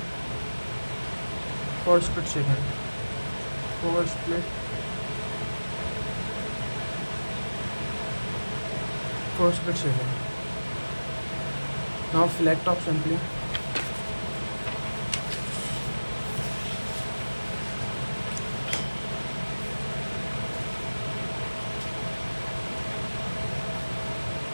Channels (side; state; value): both; inverted; correlation -1.00